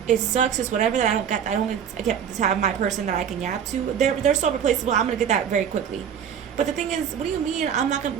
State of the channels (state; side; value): quieter; left; 8.2 dB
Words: It sucks. It's whatever that I get to have my person that I can yap to. They're so replaceable. I'm gonna get that very quickly. But the thing is, what do you mean I'm not